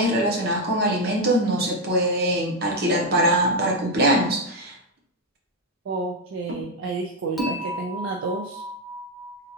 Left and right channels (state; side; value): normal; both; correlation 0.05